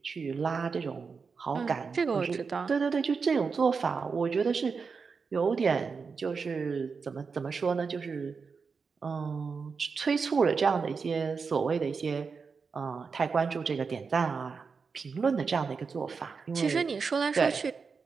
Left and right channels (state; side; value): quieter; left; 5.2 dB